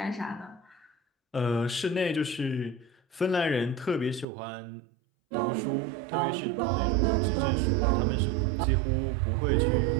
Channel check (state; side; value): drops out; left; at 4.2 s